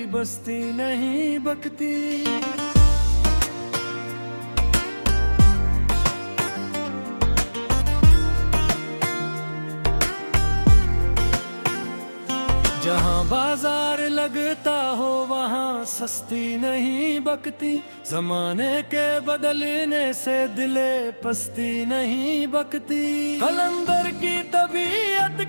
बस्ती नहीं बकती। जहाँ बाजार लगता हो वहाँ सस्ती नहीं बकती, जमाने के बदलने से दिले पस्ती नहीं बकती। कलंदर की तबीयत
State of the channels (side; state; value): both; inverted; correlation -1.00